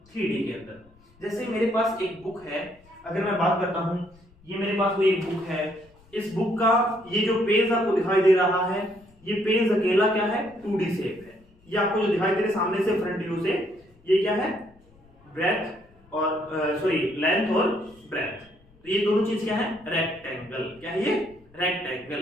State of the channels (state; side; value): noise; left; rumble, 29 dB below the sound